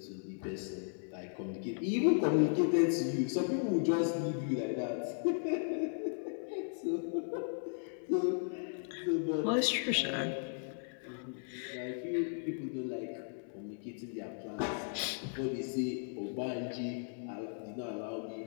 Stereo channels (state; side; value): silent; right; digital silence